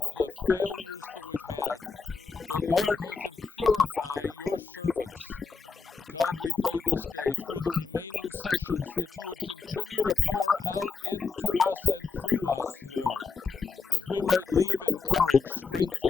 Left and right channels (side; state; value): right; quieter; 5.0 dB